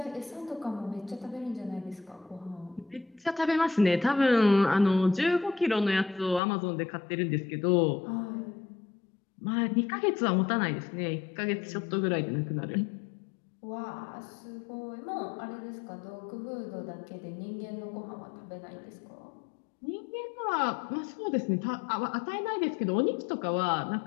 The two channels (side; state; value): right; drops out; at 6.4 s